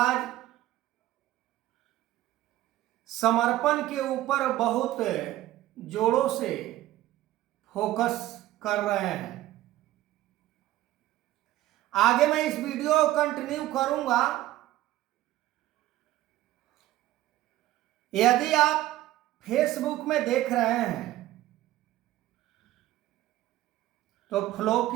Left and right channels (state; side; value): quieter; left; 15.1 dB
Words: समर्पण के ऊपर बहुत जोरों से फोकस कर रहे हैं। आगे मैं इस वीडियो को कंटिन्यू करूंगा। यदि आप फेसबुक में देख रहे हैं तो फॉलो